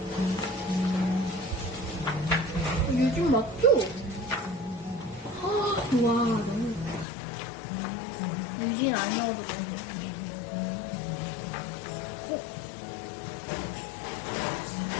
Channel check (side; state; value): right; drops out; at 7.1 s